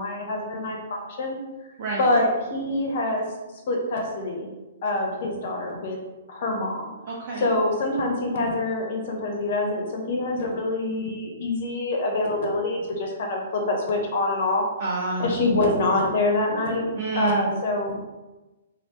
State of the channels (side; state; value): both; inverted; correlation -0.41